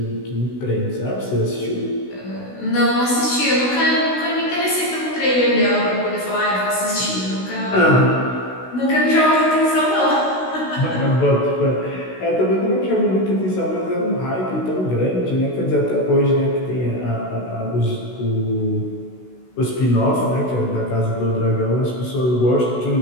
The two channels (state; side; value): late; right; 16 ms